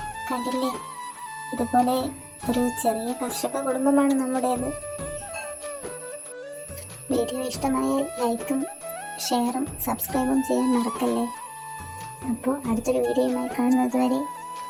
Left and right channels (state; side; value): identical; both; correlation 1.00